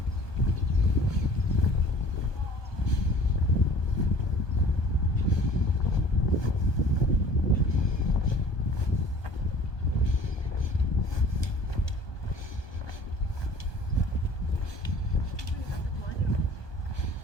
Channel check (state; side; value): late; right; 1.2 ms